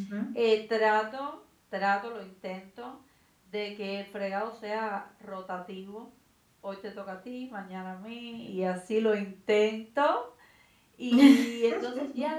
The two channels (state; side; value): identical; both; correlation 1.00